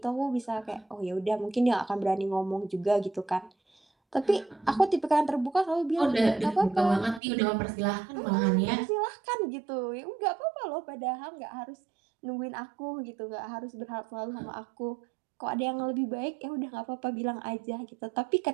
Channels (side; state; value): left; drops out; at 7.2 s